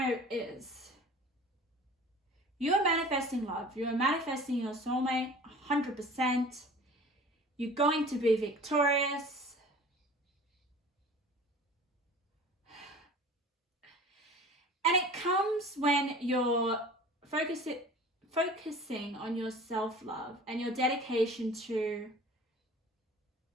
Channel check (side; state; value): both; normal; correlation 0.43